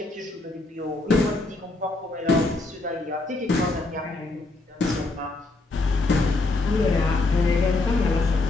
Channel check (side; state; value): right; quieter; 3.2 dB